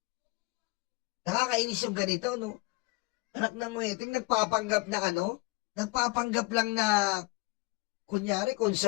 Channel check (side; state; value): right; quieter; 23.7 dB